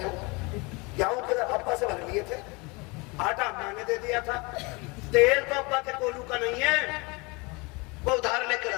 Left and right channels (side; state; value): right; quieter; 27.3 dB